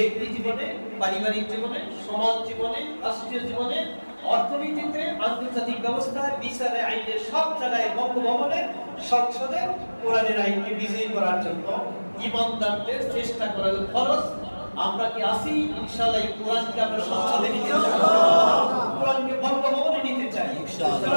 জীবনে, পারিবারিক জীবনে, সমাজ জীবনে, রাষ্ট্রীয় জীবনে, অর্থনীতিতে, আন্তর্জাতিক ব্যবস্থায়, বিচারে, আইনে, সব জায়গায়, বঙ্গভবনে, সংসদে কোরআনের আইনকে বিজয়ী করার জন্য ঈমানদারদের চেষ্টা করা ফরজ। আমরা কি আসি? ইনশাআল্লাহ এই কোরআনকে আমরা সংসদে নিতে চাই, কোরআনকে বঙ্গভবনে নিতে চাই,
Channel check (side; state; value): both; inverted; correlation -1.00